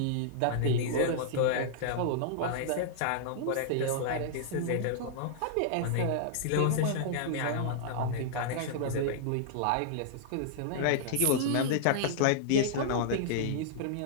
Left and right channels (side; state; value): both; different; correlation -0.01